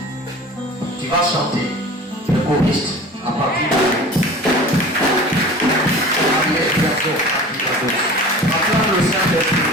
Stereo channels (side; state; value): both; normal; correlation 0.40